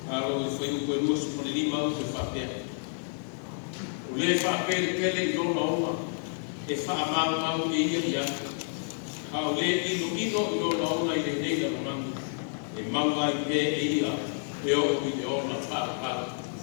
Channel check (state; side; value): silent; right; digital silence